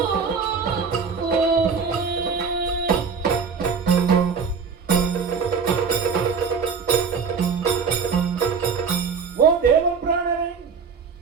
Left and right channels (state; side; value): quieter; left; 5.7 dB